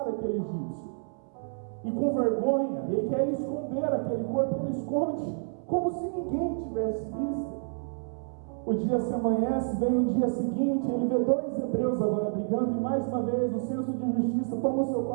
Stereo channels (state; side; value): silent; left; 59 dB below the other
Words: aquele egípcio. E com vergonha, ele quer esconder aquele corpo, ele esconde, como se ninguém tivesse visto. O dia se amanhece, vem o dia seguinte, ele vê dois hebreus agora brigando, e mais uma vez o senso de justiça toma o seu